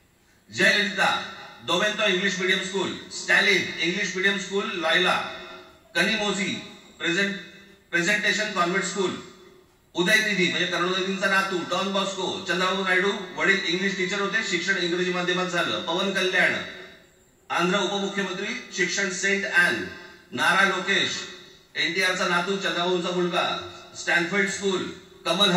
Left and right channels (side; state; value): both; identical; correlation 1.00